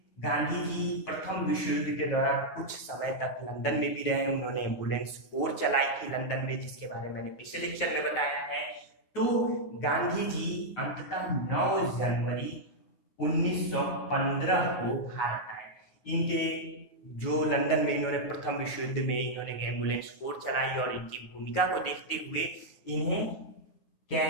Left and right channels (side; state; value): right; late; 9.3 ms